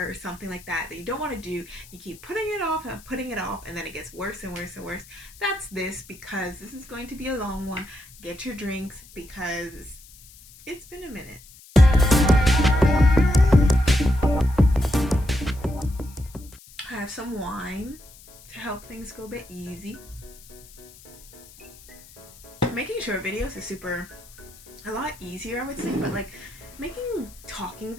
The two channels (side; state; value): left; noise; hiss, 22 dB below the sound